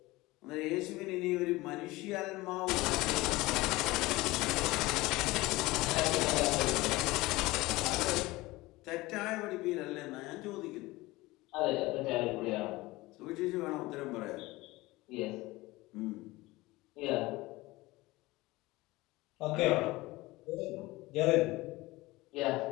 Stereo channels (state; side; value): quieter; right; 20.3 dB